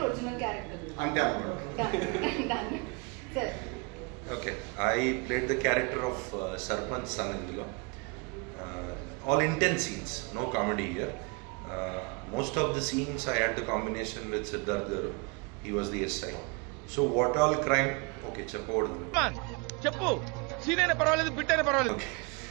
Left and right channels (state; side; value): quieter; left; 30.3 dB